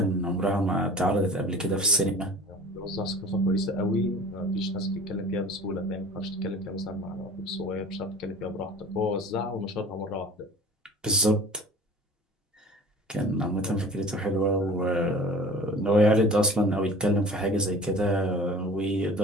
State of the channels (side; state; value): both; normal; correlation 0.42